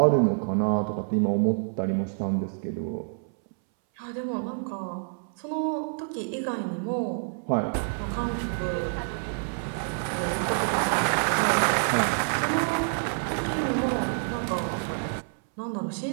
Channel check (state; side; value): silent; left; 60 dB below the other